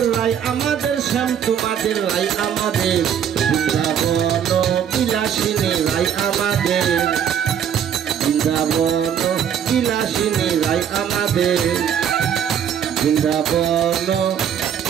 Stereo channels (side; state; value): left; quieter; 8.6 dB